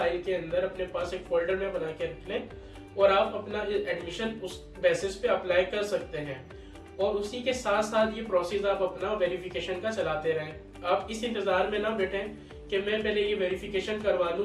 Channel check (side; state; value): both; identical; correlation 1.00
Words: के अंदर अपने पास एक फोल्डर में बना के रख लें, और आप अपना एडमिशन उस बेसिस पे अप्लाई कर सकते हैं। और उसी के साथ साथ ये प्रोसेस आप अपना वेरिफिकेशन का चलाते रहें। आप इस इंतजार में ना बैठें कि मैं पहले ये वेरिफिकेशन करवा